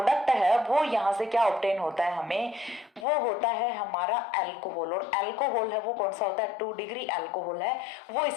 है वो यहाँ से क्या ऑब्टेन होता है हमें, वो होता है हमारा अल्कोहल। और अल्कोहल है वो कौन सा होता है, 2 डिग्री अल्कोहल है, वो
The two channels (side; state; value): right; drops out; at 3.1 s